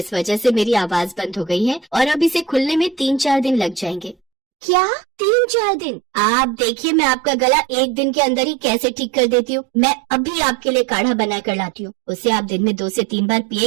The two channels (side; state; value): left; drops out; at 4.2 s